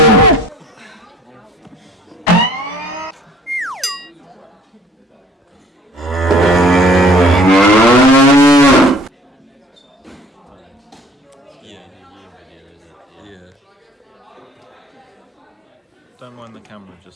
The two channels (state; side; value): normal; both; correlation 0.54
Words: Yeah. Video, is it? Yeah. Don't mind the camera,